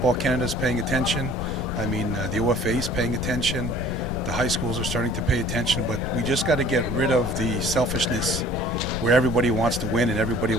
Canada is paying attention. I mean, the OFA is paying attention. The high schools are starting to pay attention. But we just got to get rid of the selfishness where everybody wants to win and everybody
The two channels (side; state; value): left; noise; rumble, 5 dB below the sound